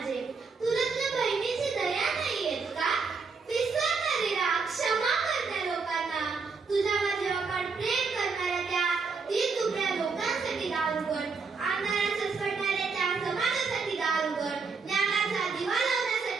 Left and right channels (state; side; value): quieter; left; 4.8 dB